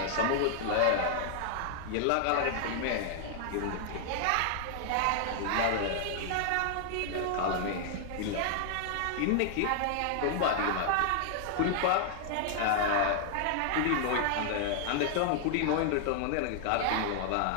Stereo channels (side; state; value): both; different; correlation 0.00